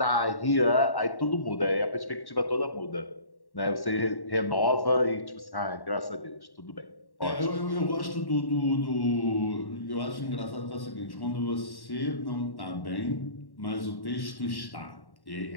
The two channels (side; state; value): right; late; 1.1 ms